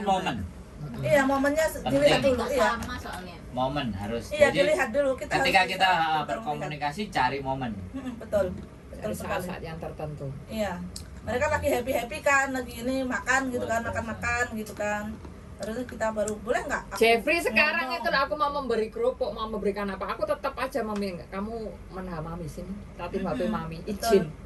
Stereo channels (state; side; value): identical; both; correlation 1.00